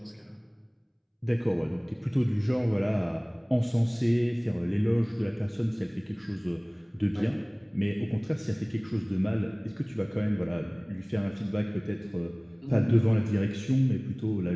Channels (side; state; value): both; identical; correlation 1.00